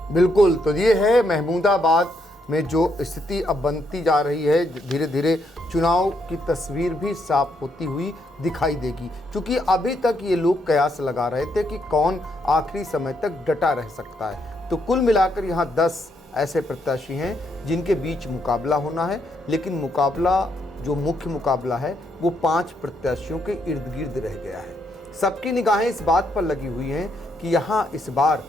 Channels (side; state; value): both; normal; correlation 0.76